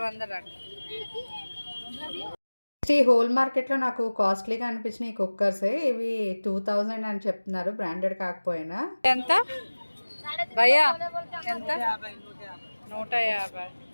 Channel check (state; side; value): inverted; both; correlation -1.00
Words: అండి. ఈ హోల్ మార్కెట్లో నాకు కాస్ట్లీగా అనిపించిన ఈ కుక్కర్సే. ఇవి 2000 అని చెప్తున్నారు, బ్రాండెడ్ కాకపోయినా. ఎంత భయ్యా? ఎంత? 150.